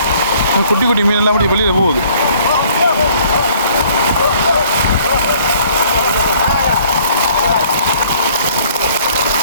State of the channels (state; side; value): inverted; both; correlation -0.58